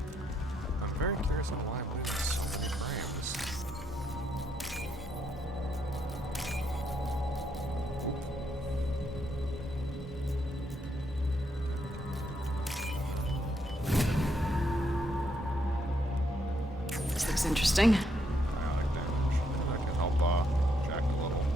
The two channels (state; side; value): normal; both; correlation 0.76